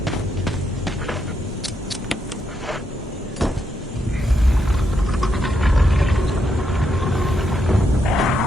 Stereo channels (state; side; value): normal; both; correlation 0.80